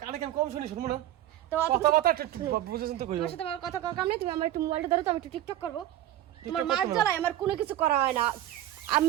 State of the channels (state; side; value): quieter; left; 13.0 dB